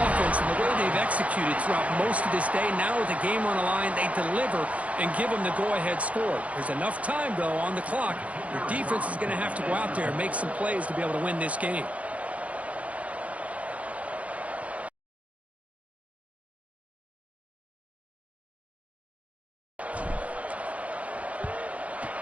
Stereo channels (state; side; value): late; left; 0.066 ms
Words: and the way they've executed throughout most of this day. Now with the game on the line, they deliver and give them the go-ahead score. There's enough time, though, on the clock. Your defense is going to have to go out there and make some plays to be able to win this game.